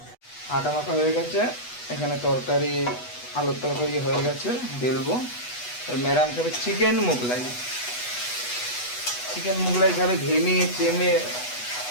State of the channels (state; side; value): late; right; 8.2 ms